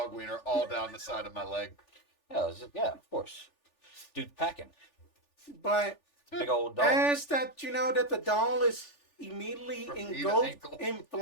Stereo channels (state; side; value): late; right; 3.4 ms